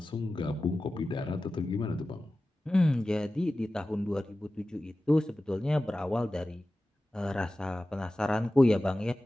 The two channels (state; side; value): normal; both; correlation 0.95